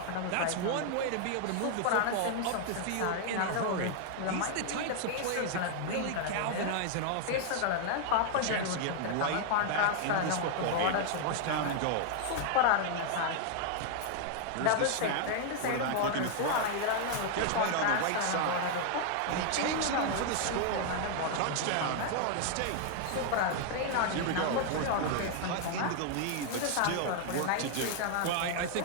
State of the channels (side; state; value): both; different; correlation 0.00